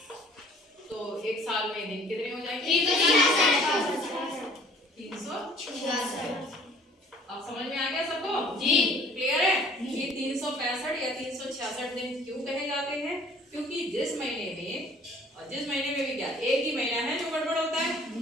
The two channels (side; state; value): both; normal; correlation 0.53